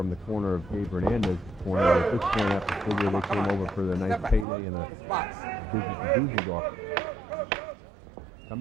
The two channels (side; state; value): left; drops out; at 4.5 s